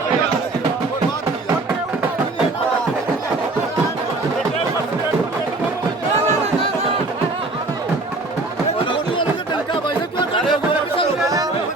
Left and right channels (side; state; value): left; quieter; 3.1 dB